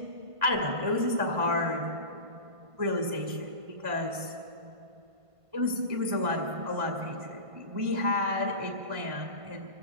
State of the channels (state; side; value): late; left; 1.5 ms